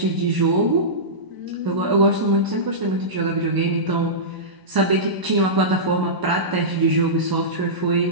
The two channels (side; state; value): left; late; 1.0 ms